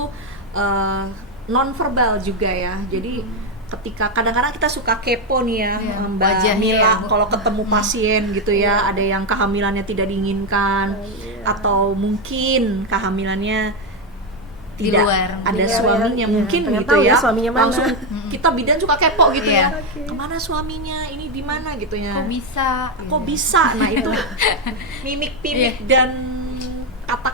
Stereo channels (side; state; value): both; normal; correlation 0.07